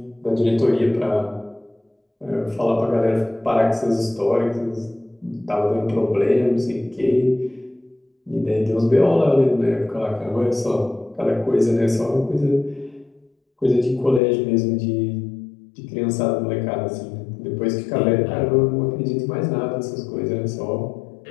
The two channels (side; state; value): right; drops out; at 14.2 s